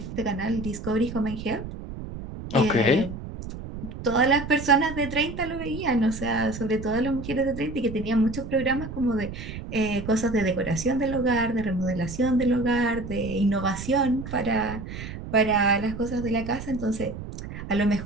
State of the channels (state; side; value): noise; right; rumble, 10 dB below the sound